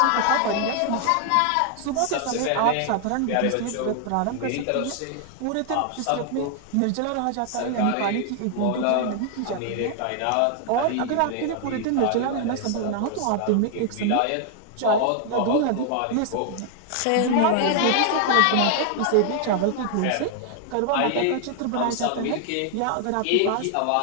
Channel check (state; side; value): different; both; correlation 0.00